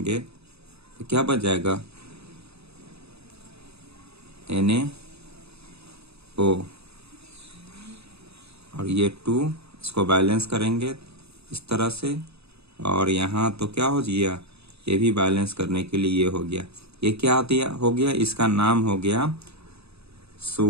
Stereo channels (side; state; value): left; late; 0.79 ms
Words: तो क्या बच जाएगा, NaO। और ये 2 इसको बैलेंस करेंगे इस तरह से, और यहाँ तो क्या हो गया, ये भी बैलेंस करने के लिए ये हो गया। ये क्या हो गया, इसका नाम हो गया